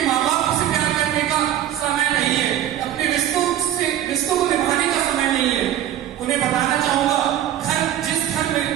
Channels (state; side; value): quieter; left; 11.6 dB